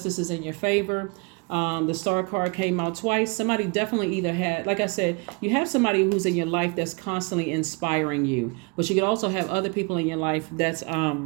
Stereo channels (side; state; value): left; quieter; 31.9 dB